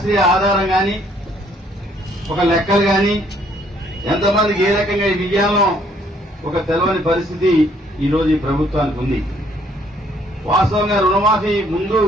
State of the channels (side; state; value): both; normal; correlation 0.65